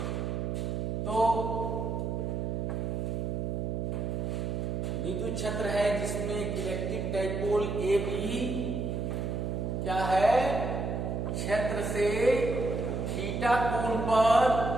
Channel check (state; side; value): noise; right; hum, 1 dB below the sound